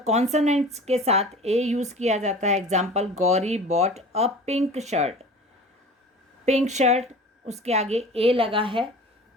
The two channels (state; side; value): normal; both; correlation 0.40